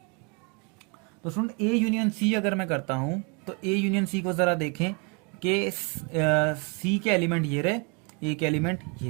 तो स्टूडेंट ए यूनियन सी अगर मैं करता हूं तो ए यूनियन सी को जरा देखें कि सी के एलिमेंट ये रहे, ए के एलिमेंट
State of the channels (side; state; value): left; quieter; 33.2 dB